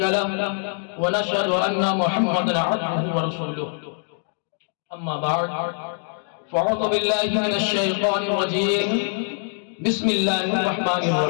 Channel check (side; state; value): right; silent; 61 dB below the other